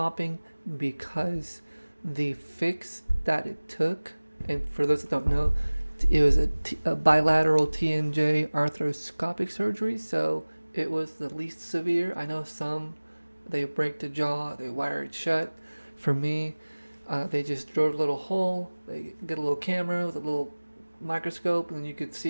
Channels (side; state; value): both; inverted; correlation -1.00